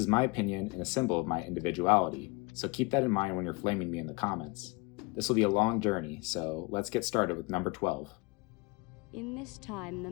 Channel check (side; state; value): right; quieter; 26.5 dB